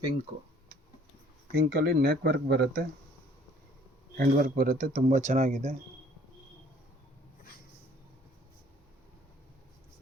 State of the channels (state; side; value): normal; both; correlation 0.57